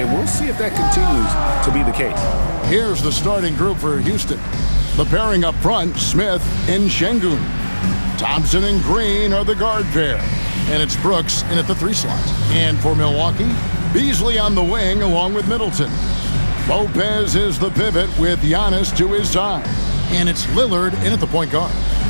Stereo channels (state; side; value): inverted; both; correlation -1.00